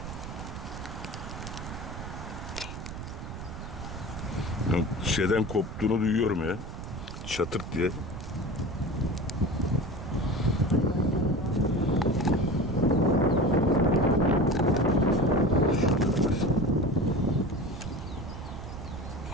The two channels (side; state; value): right; noise; rumble, 9 dB below the sound